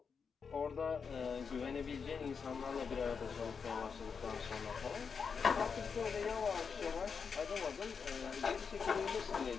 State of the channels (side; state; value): right; quieter; 5.9 dB